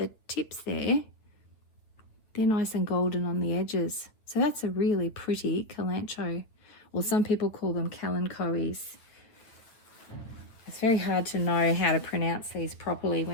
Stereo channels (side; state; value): right; late; 8.9 ms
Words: tips there, they're nice and golden on the edges. So that's a really pretty kalanchoe, or some people call them kalanchoes. It's very hard to know how to pronounce these properly